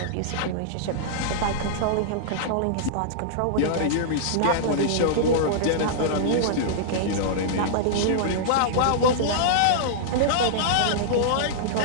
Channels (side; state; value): both; different; correlation -0.02